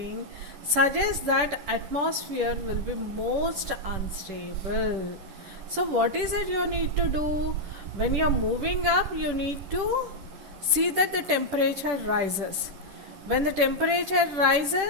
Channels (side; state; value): left; late; 10 ms